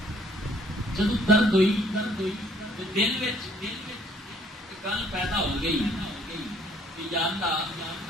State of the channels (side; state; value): both; normal; correlation 0.61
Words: جدوں درد ہوئی تے دل وچ گل پیدا ہو گئی کہ یا اللہ